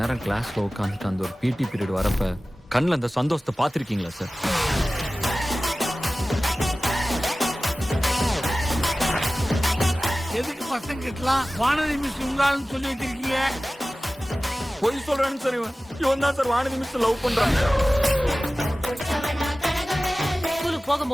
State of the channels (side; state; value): both; normal; correlation 0.97